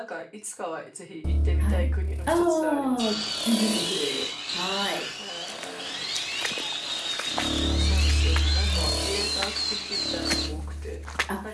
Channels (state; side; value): identical; both; correlation 1.00